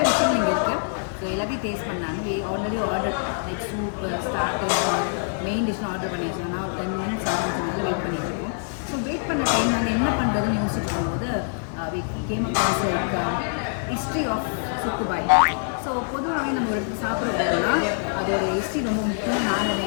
விஷயம் இங்கே இருக்குது. ஸோ எல்லாத்தையும் டேஸ்ட் பண்ணாங்க. Already order like soup starter main டிஷ்னு ஆர்டர் பண்ணி வச்சோம். நான் ஒரு 10 minutes ஆரம்பிச்சதுனால வெயிட் பண்ணிட்டு இருக்கோம். ஸோ வெயிட் பண்ண டைம் நாங்கள் என்ன பண்ணுறதுன்னு யோசிச்சுட்டு இருக்கும்போது came across like history of Subbu Bhai. So பொதுவாகவே நம்ம ஒரு இடத்துக்கு சாப்பிட போகிறோம்னா அதோட ஹிஸ்ட்ரி ரொம்ப முக்கியம். நான்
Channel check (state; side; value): silent; right; 56 dB below the other